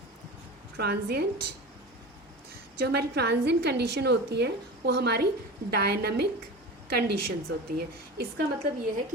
transient, जो हमारी transient condition होती है वो हमारी dynamic conditions होती हैं। इसका मतलब ये है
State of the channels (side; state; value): both; normal; correlation 0.31